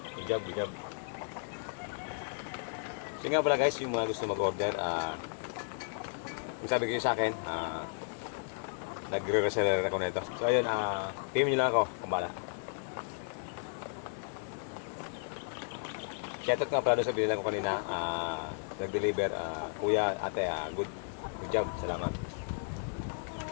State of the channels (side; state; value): right; silent; digital silence